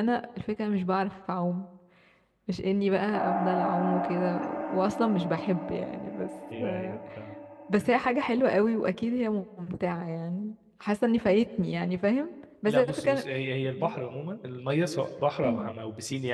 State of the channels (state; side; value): identical; both; correlation 1.00